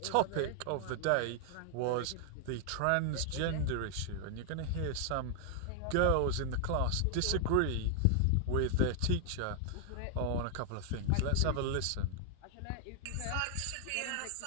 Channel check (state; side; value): different; both; correlation 0.00